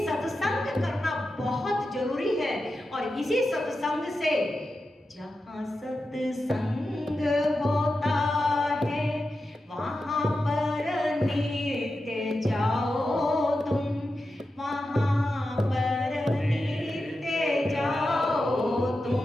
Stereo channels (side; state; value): both; normal; correlation 0.91